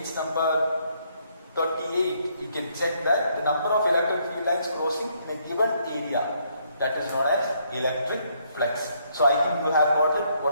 number 38, you can check that the number of electric field lines crossing in a given area, that is known as electric flux. So I think you have got it.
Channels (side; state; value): both; inverted; correlation -0.71